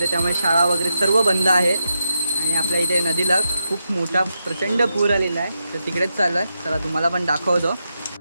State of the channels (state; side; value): inverted; both; correlation -0.86